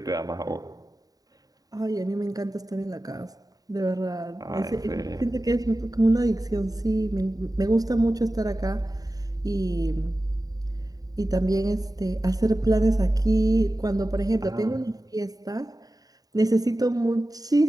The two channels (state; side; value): late; left; 0.18 ms